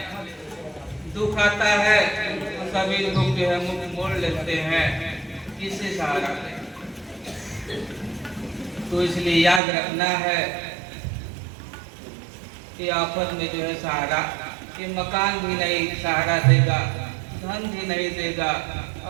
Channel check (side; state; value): left; drops out; at 9.6 s